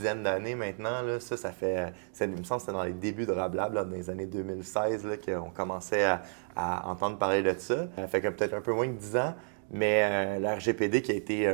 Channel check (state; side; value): silent; left; 57 dB below the other